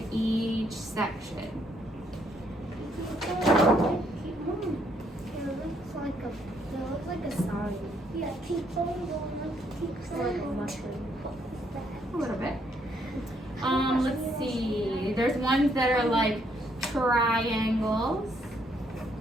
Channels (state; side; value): normal; both; correlation 0.71